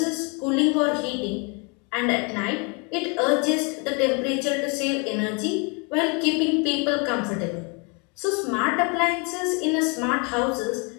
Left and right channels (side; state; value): right; quieter; 33.1 dB